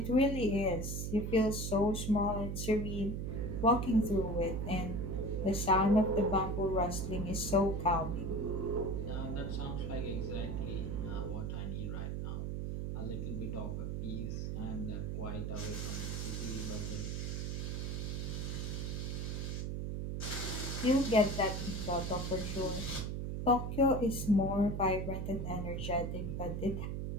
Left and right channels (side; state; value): right; noise; hum, 2 dB below the sound